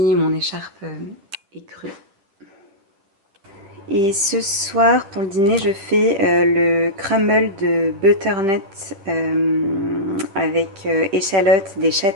mon écharpe écrue. Et ce soir, pour le dîner, je fais le crumble de butternut avec échalotes, des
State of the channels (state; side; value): late; left; 10 ms